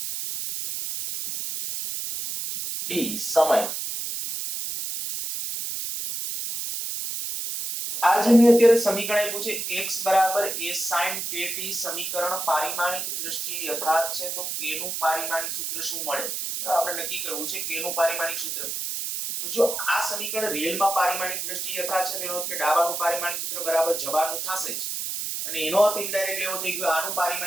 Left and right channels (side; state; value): right; noise; hiss, 3 dB below the sound